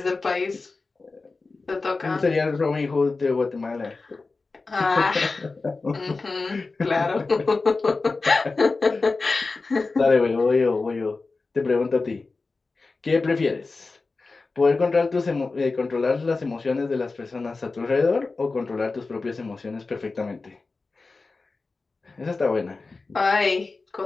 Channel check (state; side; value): quieter; right; 3.9 dB